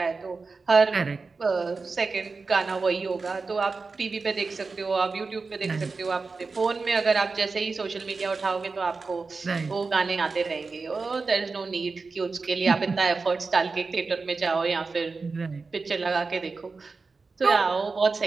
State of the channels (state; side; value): quieter; left; 4.2 dB